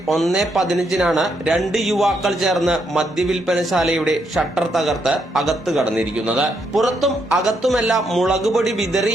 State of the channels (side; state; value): both; normal; correlation 0.77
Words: 1:15 2 യുവാക്കൾ ചേർന്ന് മദ്യവിൽപ്പനശാലയുടെ ഷട്ടർ തകർത്ത് അകത്ത് കടന്നിരിക്കുന്നത്. പുറത്തും അകത്തുമെല്ലാം മുളകുപൊടി